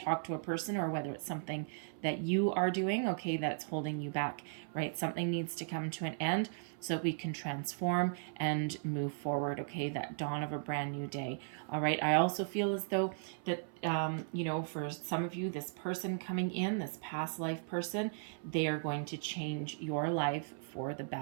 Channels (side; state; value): left; silent; 53 dB below the other